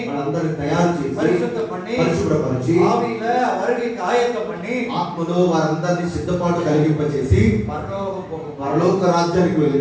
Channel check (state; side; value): identical; both; correlation 1.00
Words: వాళ్ళందరినీ తయారు చేసి, பரிசுத்தம் பண்ணி, పరిశుభ్రపరిచి, ஆவியில வருகைக்கு ஆயத்தம் பண்ணி, ఆత్మలో వారందరినీ సిద్ధపాటు కలిగింపచేసి பரலோகம் போகும். పరలోక రాజ్యానికి